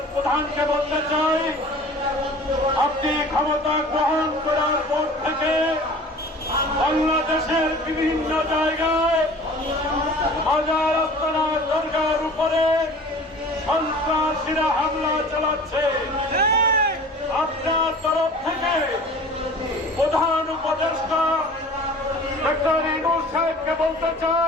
প্রধানকে বলতে চাই, আপনি ক্ষমতা গ্রহণ করার পর থেকে বাংলাদেশের বিভিন্ন জায়গায় মাজার আস্তানা দরগার উপরে সন্ত্রাসীরা হামলা চালাচ্ছে। আপনার তরফ থেকে প্রধান উপদেষ্টা ডক্টর ইউনূস সাহেবকে বলতে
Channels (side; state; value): both; normal; correlation 0.43